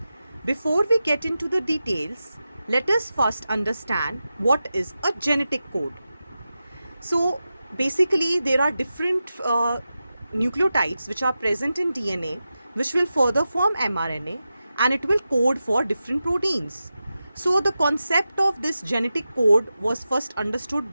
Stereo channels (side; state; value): both; inverted; correlation -0.92